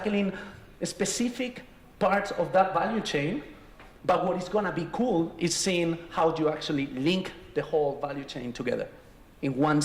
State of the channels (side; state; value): both; identical; correlation 1.00